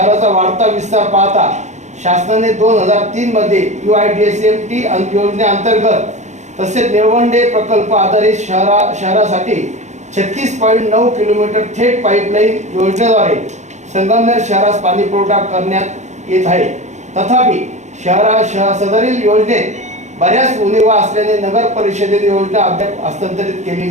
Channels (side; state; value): left; late; 0.34 ms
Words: वाढता विस्तार पाहता शासनाने 2003 मध्ये UIDSMT योजनेअंतर्गत तसेच निळवंडे प्रकल्प आधारित शहरासाठी 36.9 किलोमीटर थेट पाईपलाईन योजनेद्वारे संगमनेर शहरास पाणी पुरवठा करण्यात येत आहे. तथापि सदरील योजनेत बऱ्याच उणिवा असल्याने नगर परिषदेने योजना अद्याप हस्तांतरित